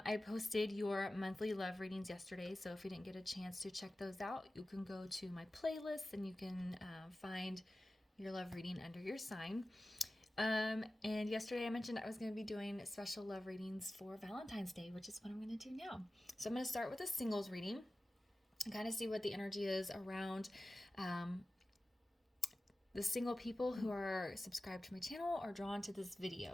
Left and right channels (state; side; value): normal; both; correlation 0.95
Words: posted your monthly love readings yesterday, so if you didn't get a chance to check those out, you can go to my playlist and you can find your love reading under your sign. And yesterday I mentioned I was going to be doing special love readings for Valentine's Day, which is what I'm going to do now. So I'm going to start with a singles reading and kind of see what the energy is around the single people who are subscribed to my channel or drawn to this